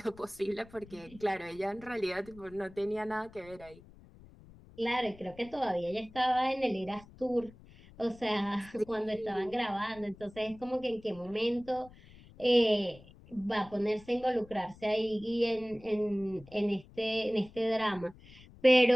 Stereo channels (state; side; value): noise; left; rumble, 22 dB below the sound